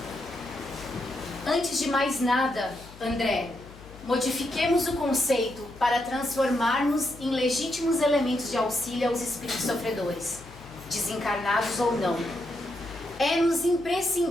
Antes de mais nada, André, modifiquemos o conceito para transformarmos em legítimos elementos de auxílio aos espíritos sofredores, desencarnados ou não. É-nos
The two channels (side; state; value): left; noise; hum, 20 dB below the sound